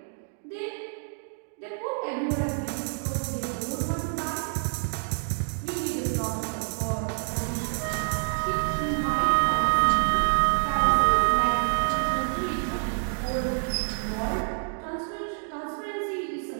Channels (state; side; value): silent; left; 60 dB below the other